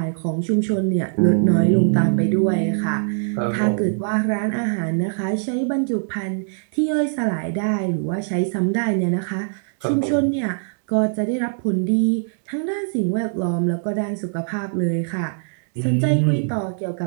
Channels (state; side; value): silent; left; digital silence